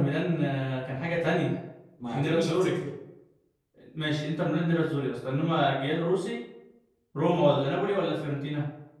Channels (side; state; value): both; identical; correlation 1.00